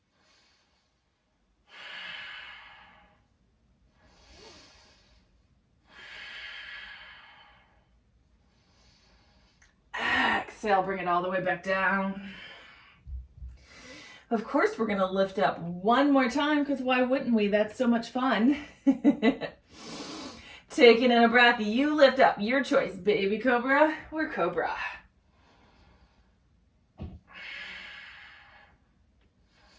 Exhale, bring it all the way back down. Of course, we're gonna lift up one more time because why wouldn't we? That's so much fun. Taking in a breath, you lift up. Your choice, baby cobra or cobra.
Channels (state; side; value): identical; both; correlation 1.00